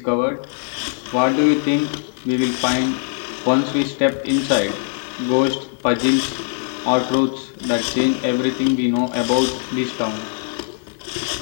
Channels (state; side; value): silent; right; 57 dB below the other